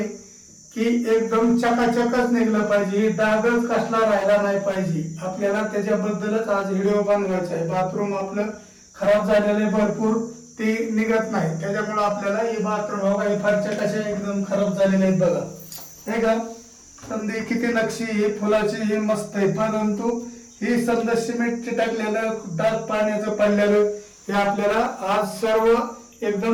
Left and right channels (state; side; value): identical; both; correlation 1.00